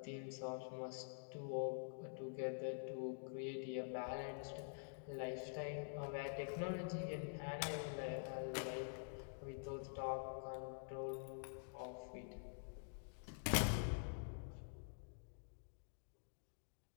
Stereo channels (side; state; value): right; silent; digital silence